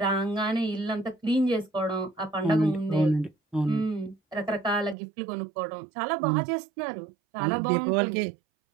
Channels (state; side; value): drops out; left; at 5.0 s